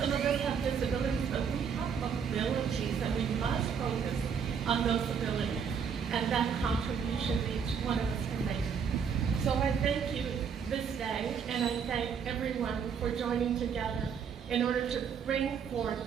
of us have disabilities, but we have abilities, and we must focus on those abilities and that contribution each one of us can make. So I thank you this day, and I thank everyone for joining together in order to bring forth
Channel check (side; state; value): left; quieter; 6.8 dB